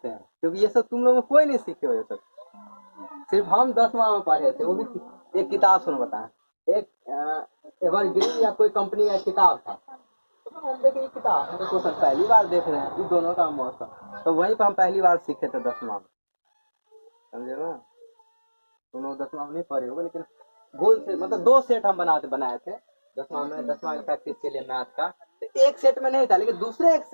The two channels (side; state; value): both; inverted; correlation -1.00